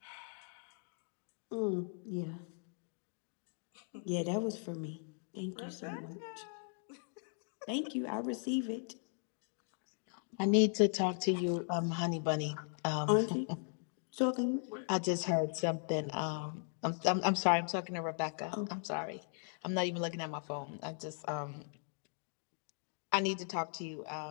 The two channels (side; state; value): right; silent; 52 dB below the other